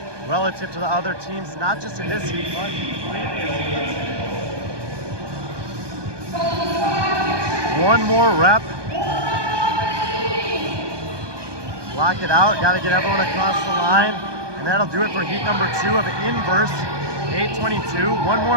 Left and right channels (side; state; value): left; late; 1.2 ms